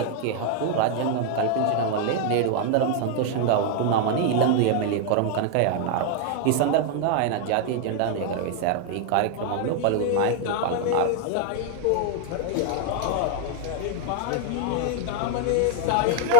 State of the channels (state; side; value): different; both; correlation 0.00